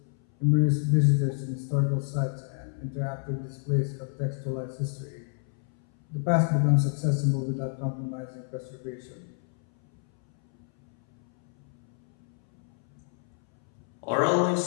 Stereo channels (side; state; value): right; silent; 59 dB below the other